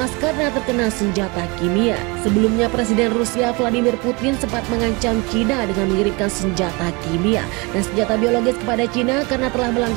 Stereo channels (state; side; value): quieter; left; 27.6 dB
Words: karena terkena senjata kimia. Sebelumnya Presiden Rusia Vladimir Putin sempat mengancam Cina dengan mengirimkan senjata kimia dan senjata biologis kepada Cina karena telah